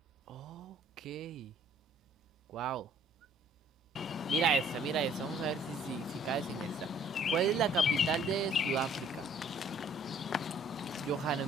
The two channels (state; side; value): normal; both; correlation 0.58